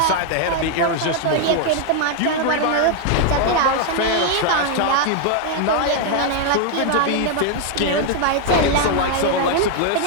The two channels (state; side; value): different; both; correlation 0.00